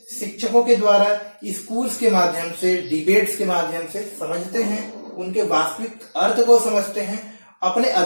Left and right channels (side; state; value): both; inverted; correlation -1.00